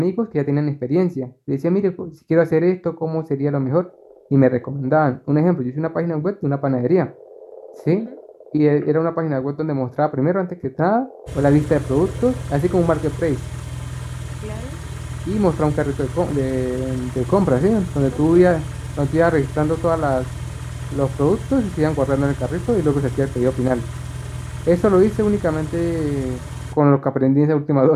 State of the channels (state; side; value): identical; both; correlation 1.00